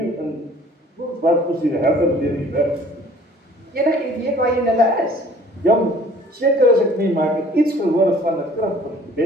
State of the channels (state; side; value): normal; both; correlation 0.53